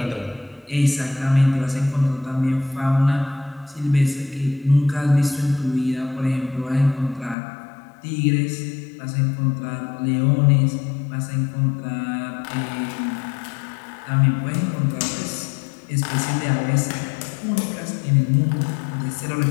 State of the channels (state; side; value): drops out; right; at 7.4 s